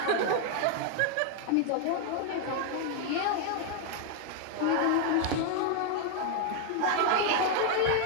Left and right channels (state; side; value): different; both; correlation 0.00